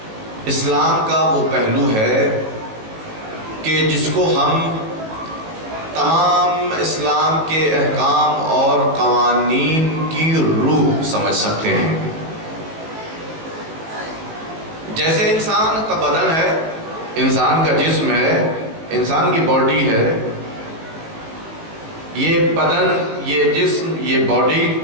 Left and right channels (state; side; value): late; left; 18 ms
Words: اسلام کا وہ پہلو ہے کہ جس کو ہم تمام اسلام کے احکام اور قوانین کی روح سمجھ سکتے ہیں۔ جیسے انسان کا بدن ہے، انسان کا جسم ہے، انسان کی باڈی ہے، یہ بدن، یہ جسم، یہ باڈی